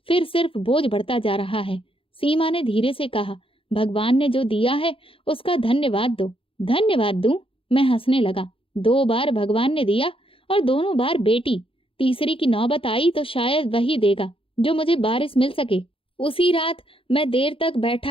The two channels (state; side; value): late; right; 0.26 ms